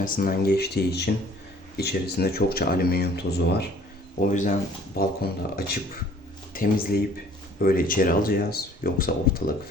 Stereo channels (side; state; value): both; normal; correlation 0.54